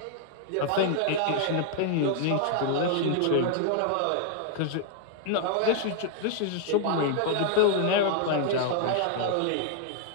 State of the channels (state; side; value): different; both; correlation 0.00